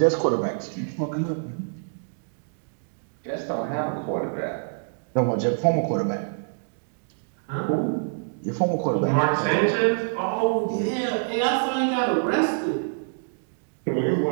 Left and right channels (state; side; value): silent; left; digital silence